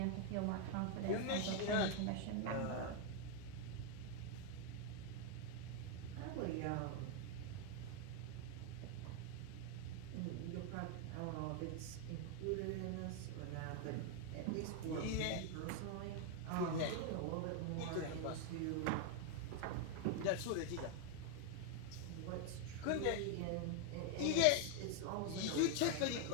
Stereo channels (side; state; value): both; different; correlation 0.00